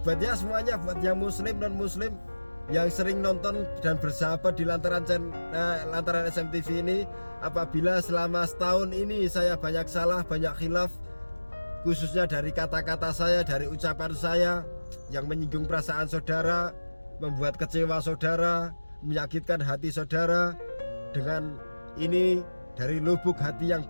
buat ya semuanya, buat yang muslim non muslim yang sering nonton dan bersahabat di Lantaran SMTV ini, apabila selama setahun ini saya banyak salah, banyak khilaf, khususnya dari kata-kata saya, dari ucapan saya yang menyinggung perasaan saudara, membuat kecewa saudara, menyakitkan hati saudara, dengan ini dari lubuk hati yang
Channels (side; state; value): both; inverted; correlation -1.00